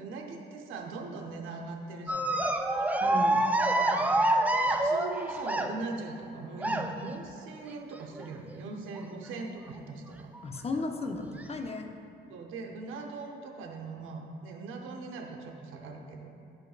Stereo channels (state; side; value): normal; both; correlation 0.67